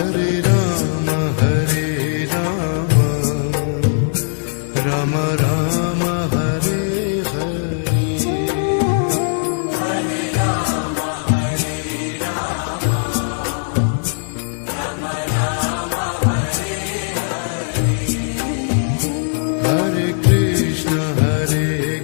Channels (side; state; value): right; silent; digital silence